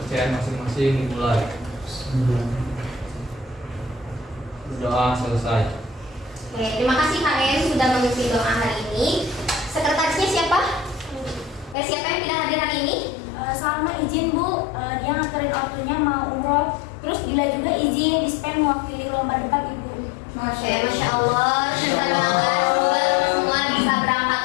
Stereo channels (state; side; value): drops out; right; at 11.8 s